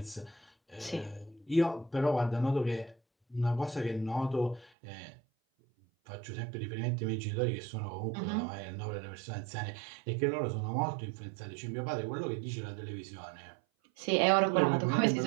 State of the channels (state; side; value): drops out; left; at 4.7 s